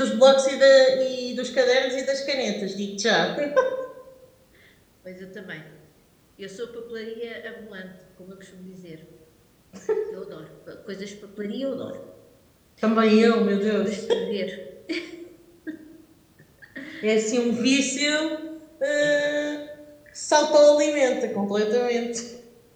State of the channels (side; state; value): both; identical; correlation 1.00